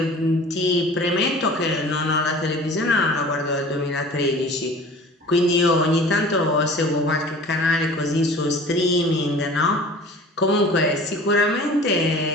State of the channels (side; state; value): both; normal; correlation 0.43